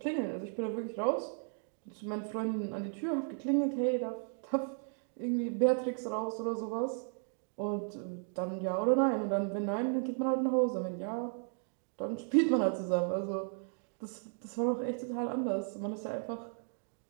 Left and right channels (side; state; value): left; silent; 55 dB below the other